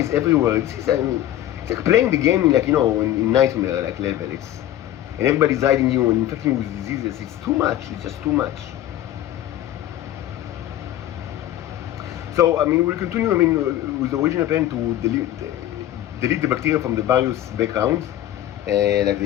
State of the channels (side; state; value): right; quieter; 12.8 dB